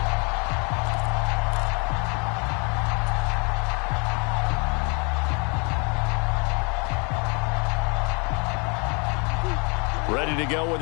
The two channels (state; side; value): quieter; right; 34.0 dB